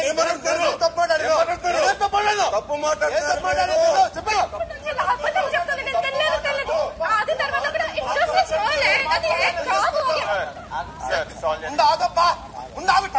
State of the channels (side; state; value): both; identical; correlation 1.00